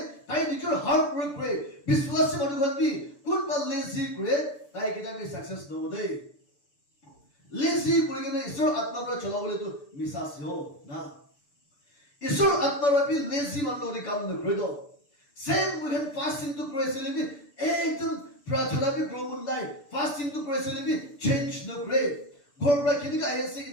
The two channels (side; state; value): right; late; 6.9 ms